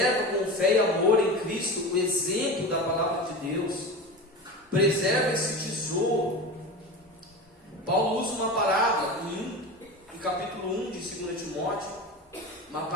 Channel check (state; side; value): normal; both; correlation 0.28